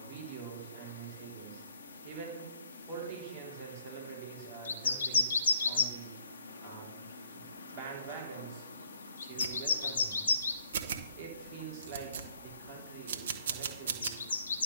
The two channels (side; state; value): both; inverted; correlation -0.68